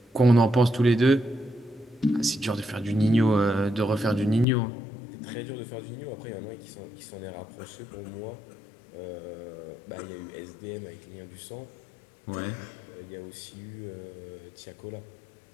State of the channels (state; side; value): drops out; right; at 4.5 s